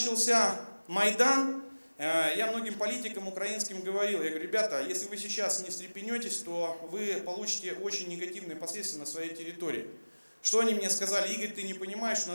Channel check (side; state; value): both; inverted; correlation -1.00